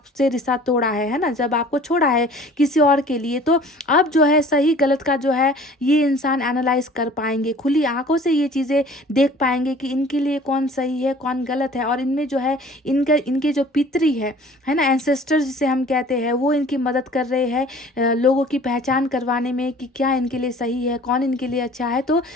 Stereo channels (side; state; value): both; normal; correlation 0.49